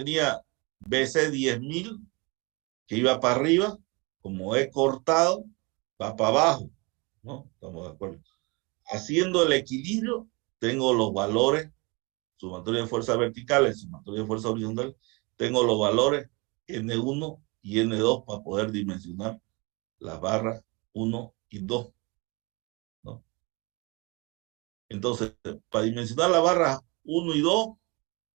BC 10.000 que iba para arriba. Como he cortado, va para abajo, ¿no? Estamos de acuerdo. Haciendo el equilibrio, tengo los valores, sumatoria de fuerzas verticales, sumatoria de fuerzas horizontales, tengo los valores N1 y N2 para poder dimensionar las barras 1 y 2, ¿no? Entonces, para dimensionar las barras 1 y 2,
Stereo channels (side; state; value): left; quieter; 27.6 dB